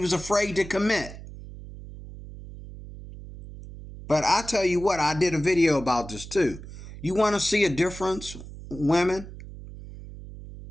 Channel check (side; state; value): right; noise; hum, 14 dB below the sound